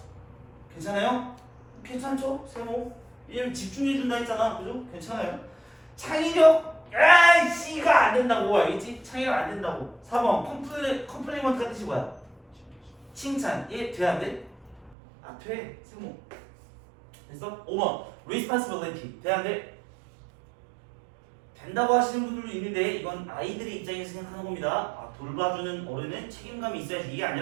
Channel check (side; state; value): left; drops out; at 15.0 s